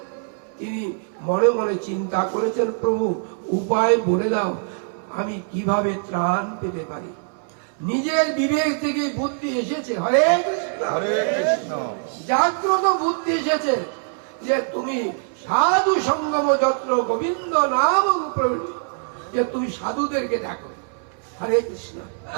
তিনি মনে মনে চিন্তা করেছেন, প্রভু উপায় বলে দাও, আমি কিভাবে ত্রাণ পেতে পারি। নিজের বিবেক থেকে বুদ্ধি এসেছে। হরে কৃষ্ণ। হরে কৃষ্ণ। জাগ্রত বুদ্ধি এসেছে যে তুমি সাধু সঙ্গম যত্র গোবিন্দ নাম প্রবৃত্তি, যে তুমি সাধুদেরকে ডাকো। হরে কৃষ্ণ।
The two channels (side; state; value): left; silent; 63 dB below the other